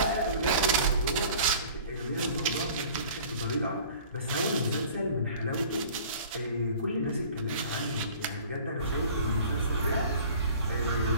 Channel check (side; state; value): both; inverted; correlation -0.47